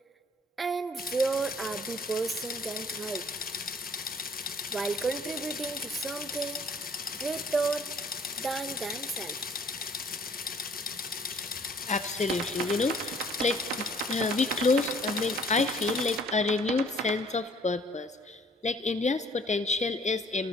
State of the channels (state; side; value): normal; both; correlation 0.57